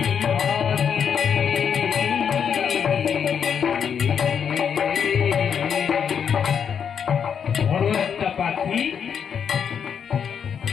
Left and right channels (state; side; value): quieter; right; 7.5 dB